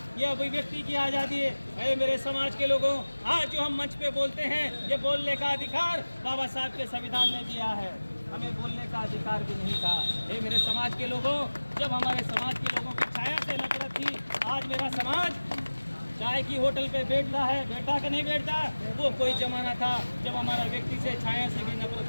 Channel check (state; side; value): inverted; both; correlation -1.00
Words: यह अभिव्यक्ति की आज़ादी है। मेरे समाज के लोगों, आज जो हम मंच पे बोलते हैं, ये बोलने का अधिकार बाबा साहब के संविधान ने दिया है। हमें बोलने का अधिकार भी नहीं था। ये मेरे समाज के लोगों, जब हमारे समाज के लोगों की छाया से नफरत थी, आज मेरा समाज चाय की होटल पे बैठता है, बैठता कि नहीं बैठता? वो कोई जमाना था जब हमारा व्यक्ति से, छाया से भी